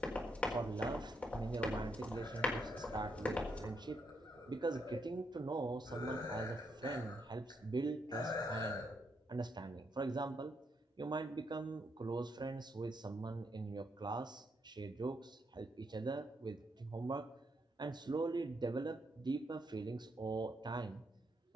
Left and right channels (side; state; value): both; normal; correlation 0.78